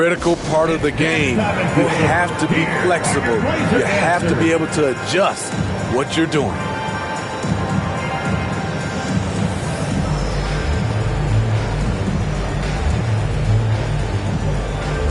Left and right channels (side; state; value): both; identical; correlation 1.00